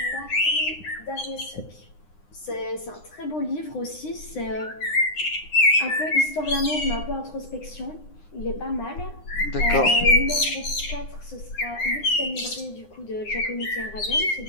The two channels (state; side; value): late; right; 9.8 ms